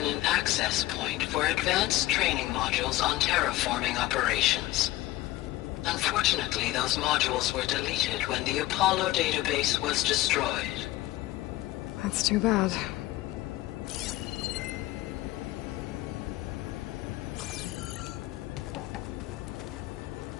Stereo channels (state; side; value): quieter; right; 17.5 dB